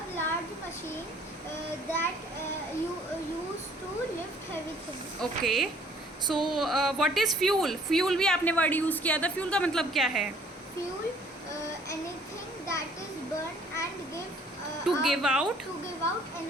large machine that used to lift heavy things. Okay, so what is fuel? Fuel भी आपने वर्ड यूज़ किया था। फ्यूल का मतलब क्या है? Fuel, anything that is burned and To give out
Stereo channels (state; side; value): normal; both; correlation 0.59